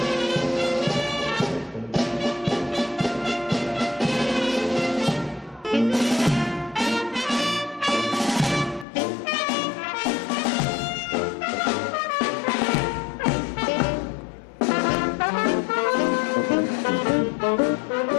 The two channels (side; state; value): right; drops out; at 8.8 s